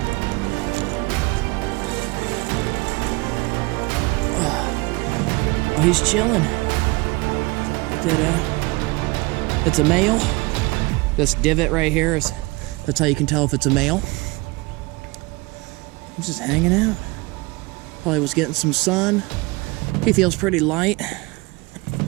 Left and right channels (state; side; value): quieter; left; 24.6 dB